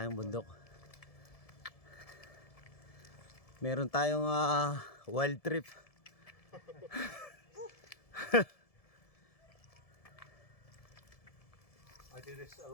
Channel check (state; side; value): late; right; 1.7 ms